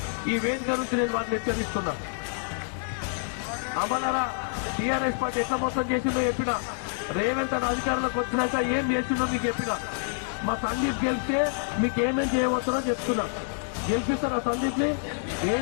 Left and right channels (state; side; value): silent; right; digital silence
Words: ఈ వేదిక నుంచి నేను వాటిని హెచ్చరిస్తున్నాను. అవ్వలారా, టీఆర్ఎస్ పార్టీ ఎట్లా మోసం చేసిందో చెప్పినా, రేవంత్ అని అధికారంలోకి వచ్చినాక ఏం చేసిందో మీకు చెప్పినా. మా సందీప్ గెలిస్తే మీకు ఏమేం చేయవచ్చునో చెప్తున్నా. గెలిపిస్తారా సందీప్ ని? ఏం